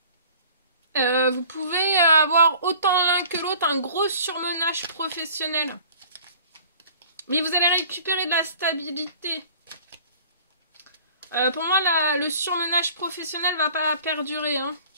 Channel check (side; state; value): both; inverted; correlation -0.47